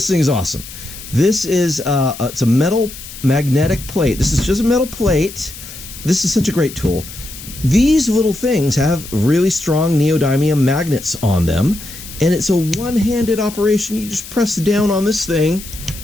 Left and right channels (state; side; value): noise; left; hiss, 14 dB below the sound